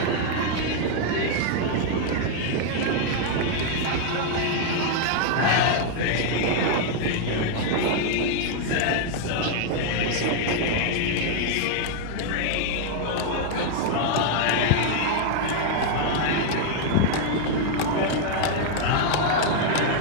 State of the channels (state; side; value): different; both; correlation 0.00